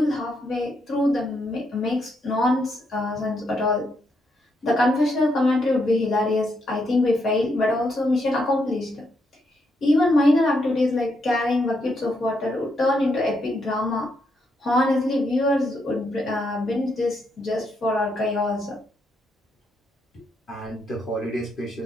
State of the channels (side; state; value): both; normal; correlation 0.78